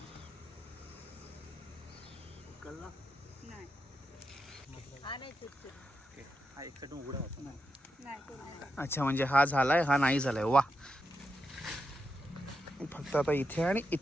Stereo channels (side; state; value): both; normal; correlation 0.85